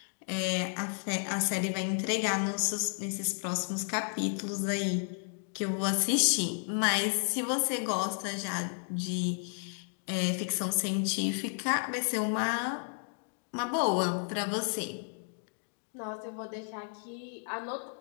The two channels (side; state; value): right; silent; 56 dB below the other